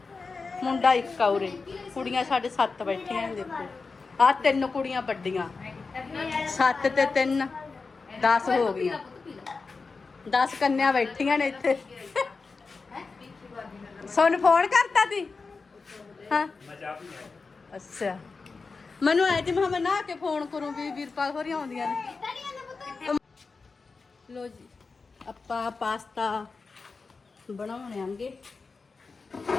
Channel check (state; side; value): quieter; right; 4.3 dB